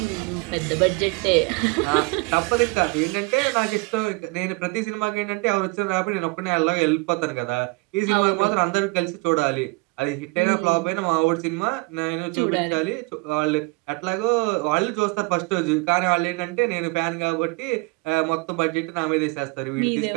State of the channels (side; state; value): left; quieter; 27.1 dB